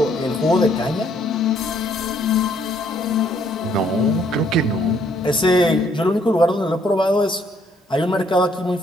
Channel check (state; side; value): normal; both; correlation 0.67